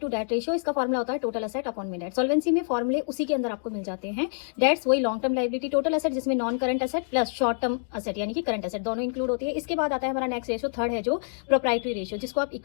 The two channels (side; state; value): right; silent; digital silence